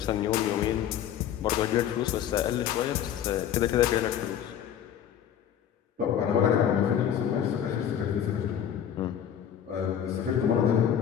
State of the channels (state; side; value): quieter; right; 9.6 dB